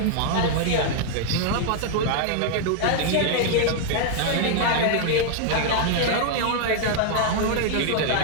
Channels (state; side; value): different; both; correlation 0.00